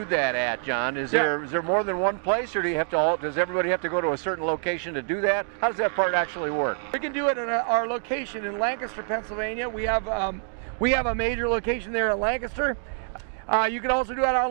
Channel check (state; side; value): silent; left; 61 dB below the other